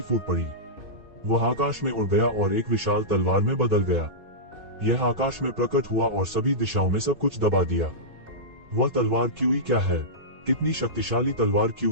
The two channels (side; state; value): left; late; 2.6 ms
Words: फूट पड़ी। वह आकाश में उड़ गया और एक विशाल तलवार में बदल गया। यह आकाश में प्रकट हुआ और सभी दिशाओं में सब कुछ दबा दिया। वह तलवार क्यूई क्या है? कितनी शक्तिशाली तलवार